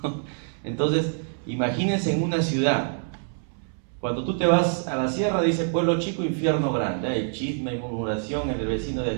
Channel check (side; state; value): left; silent; 61 dB below the other